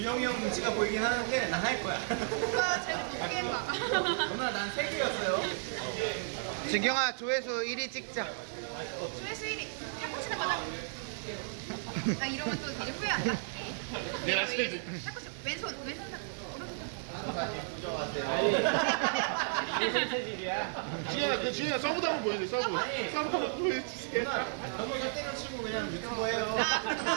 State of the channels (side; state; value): left; silent; 55 dB below the other